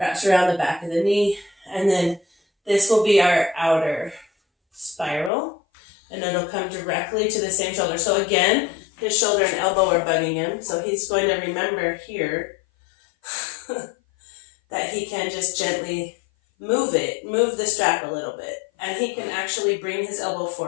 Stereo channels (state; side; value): drops out; right; at 5.3 s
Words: around the back of the knee, and then this will be our outer spiral, and it'll come directly to the same shoulder. So again, his shoulder and elbow are bugging him, so he's going to remember here that he can just gently move the strap a little bit, and he can actually bring his elbow